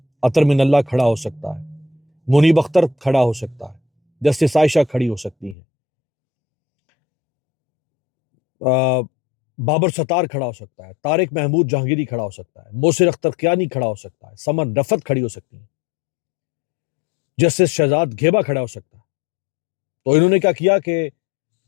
عطر من اللہ کھڑا ہو سکتا ہے، منیب اختر کھڑا ہو سکتا ہے، جسٹس عائشہ کھڑی ہو سکتی ہیں، بابر ستار کھڑا ہو سکتا ہے، طارق محمود جہانگیری کھڑا ہو سکتا ہے، موسر اختر کیانی کھڑا ہو سکتا ہے، سمن رفت کھڑی ہو سکتی ہیں، جسٹس شہزاد گھیبا کھڑا ہو سکتا ہے۔ تو انہوں نے کیا کیا کہ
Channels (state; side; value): drops out; right; at 5.6 s